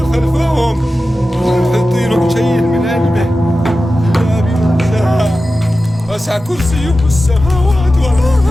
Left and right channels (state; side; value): normal; both; correlation 0.94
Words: ولا يحيطون بشيء من علمه الا بما شاء. وسع كرسيه السماوات